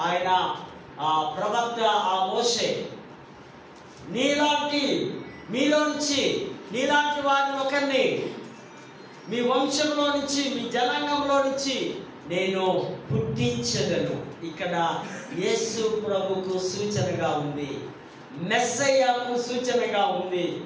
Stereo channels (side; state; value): both; identical; correlation 1.00